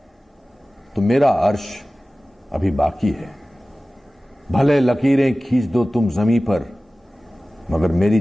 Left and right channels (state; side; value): normal; both; correlation 0.97